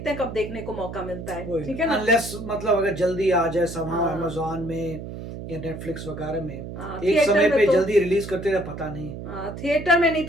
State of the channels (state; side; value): noise; right; hum, 9 dB below the sound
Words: हैं कब देखने को मौका मिलता है। ठीक है ना? अनलेस मतलब अगर जल्दी आ जाए समहाउ हाँ। अमेज़न में या नेटफ्लिक्स वगैरह में एक थिएटर समय में पे तो जल्दी रिलीज करते हैं, पता नहीं। थिएटर में नहीं